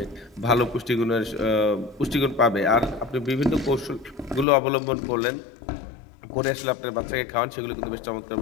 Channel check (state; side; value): drops out; right; at 4.5 s